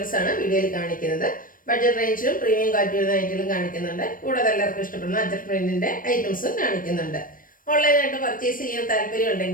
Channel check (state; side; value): late; right; 0.40 ms